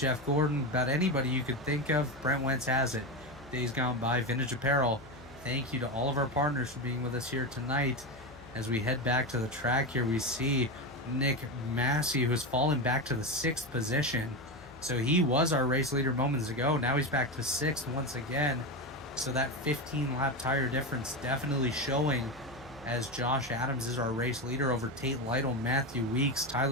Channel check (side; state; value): left; noise; hum, 21 dB below the sound